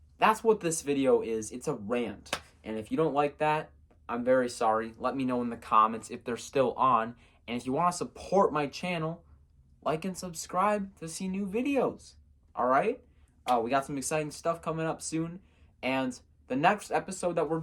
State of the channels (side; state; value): both; identical; correlation 1.00